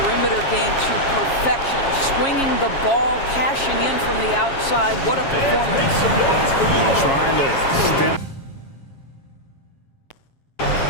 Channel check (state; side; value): late; right; 7.3 ms